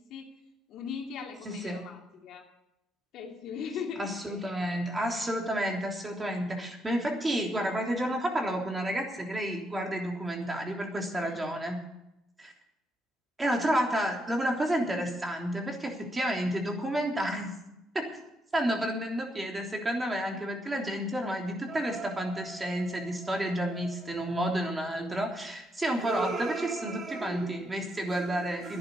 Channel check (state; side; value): normal; both; correlation 0.78